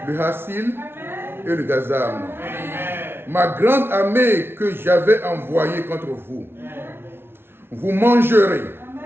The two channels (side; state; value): left; late; 0.11 ms